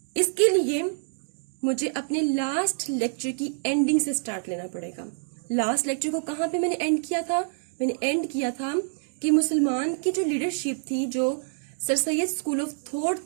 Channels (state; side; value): silent; left; digital silence